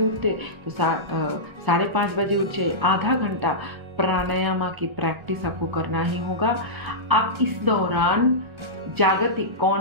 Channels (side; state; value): left; late; 1.3 ms